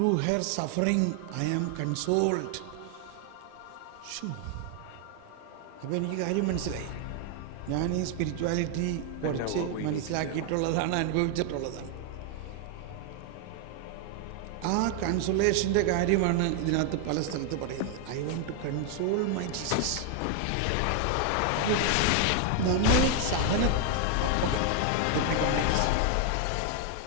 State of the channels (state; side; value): different; both; correlation 0.00